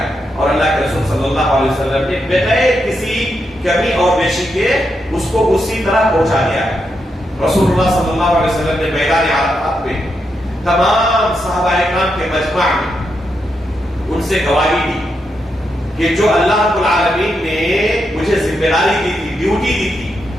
اور اللہ کے رسول صلی اللہ علیہ وسلم نے بغیر کسی کمی اور بیشی کے اس کو اسی طرح پہنچا دیا ہے۔ رسول اللہ صلی اللہ علیہ وسلم نے میدان عرفات میں تمام صحابہ کرام کے مجمع میں ان سے گواہی دی کہ جو اللہ رب العالمین نے مجھے ذمہ داری دی تھی، ڈیوٹی دی تھی،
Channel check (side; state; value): both; normal; correlation 0.83